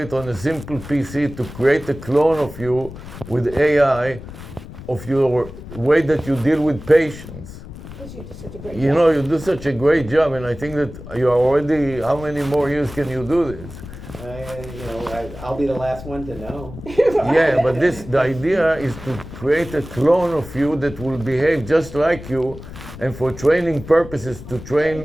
on a simple PC to create a clone of you with AI, of your way that you deal with patients. Because you do such a great You job. know, you do such a great job, and I think that you are already, how many more years can you do this? I'll be the last one to know. Yeah, but the idea is to create a clone of you that will behave just like you, and for training purposes to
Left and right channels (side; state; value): left; noise; rumble, 14 dB below the sound